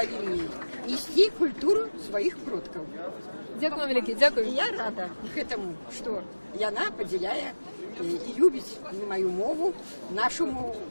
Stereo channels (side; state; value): both; inverted; correlation -1.00